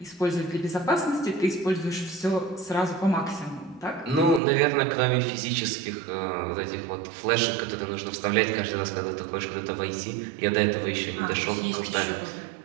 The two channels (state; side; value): drops out; left; at 4.4 s